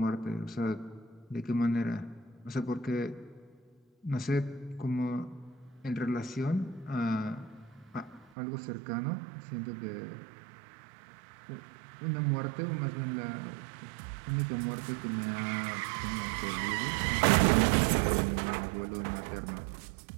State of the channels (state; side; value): drops out; left; at 8.3 s